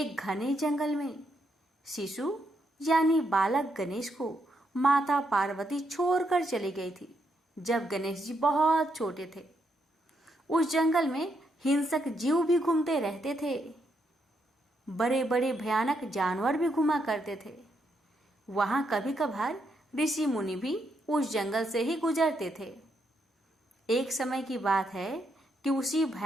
घने जंगल में शिशु यानी बालक गणेश को माता पार्वती छोड़कर चली गई थी जब गणेश जी बहुत छोटे थे। उस जंगल में हिंसक जीव भी घूमते रहते थे। बड़े बड़े भयानक जानवर भी घुमा करते थे। वहां कभी कभार ऋषि मुनि भी उस जंगल से ही गुजरते थे। एक समय की बात है कि उसी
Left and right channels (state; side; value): normal; both; correlation 0.78